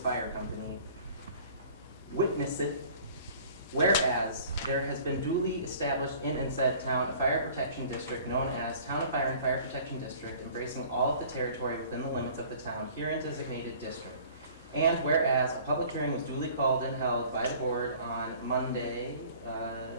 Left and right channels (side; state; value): both; inverted; correlation -0.49